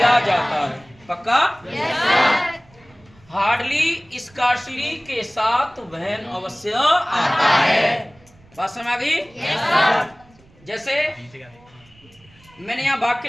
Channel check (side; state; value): right; noise; rumble, 29 dB below the sound